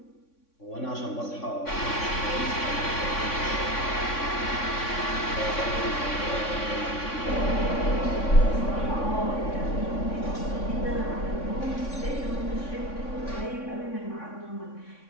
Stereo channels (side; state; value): right; late; 3.6 ms